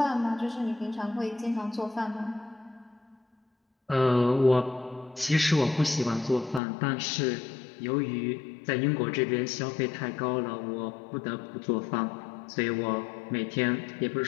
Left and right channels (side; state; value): right; drops out; at 6.6 s